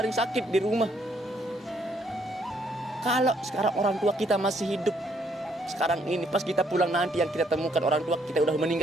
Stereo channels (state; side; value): normal; both; correlation 0.69